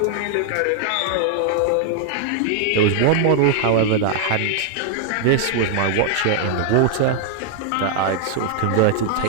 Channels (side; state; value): both; different; correlation 0.00